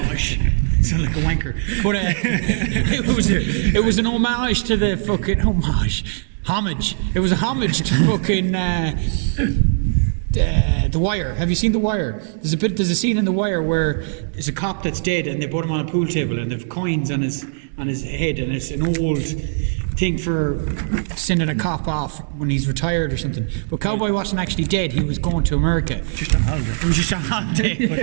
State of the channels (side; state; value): left; silent; digital silence